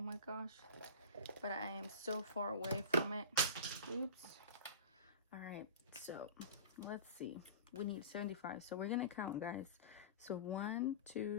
gosh, but I am so far away from it. Oops. All right, so let's see. We need 75, so we're gonna count, guys. So 1,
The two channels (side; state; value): both; inverted; correlation -0.36